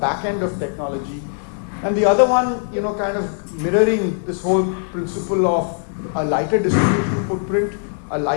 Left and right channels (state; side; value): silent; right; 65 dB below the other